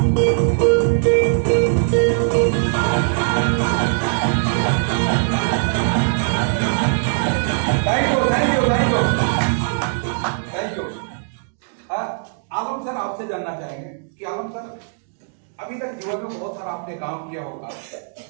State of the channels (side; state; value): left; silent; digital silence